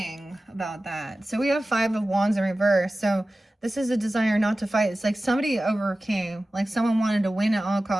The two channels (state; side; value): normal; both; correlation 0.96